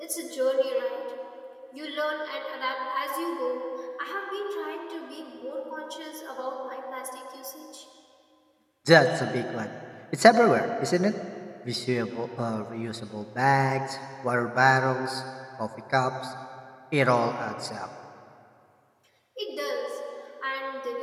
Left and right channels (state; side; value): identical; both; correlation 1.00